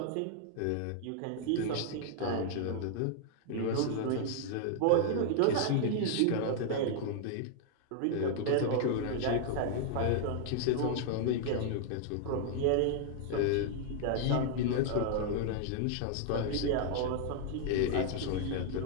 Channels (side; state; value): both; different; correlation 0.00